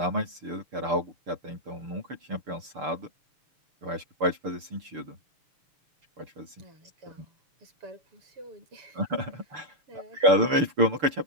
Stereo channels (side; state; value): left; late; 6.8 ms